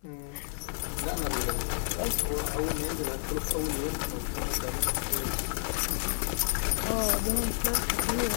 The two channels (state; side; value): silent; right; 58 dB below the other